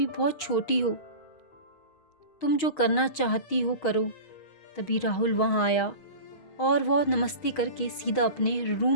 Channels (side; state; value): right; late; 6.3 ms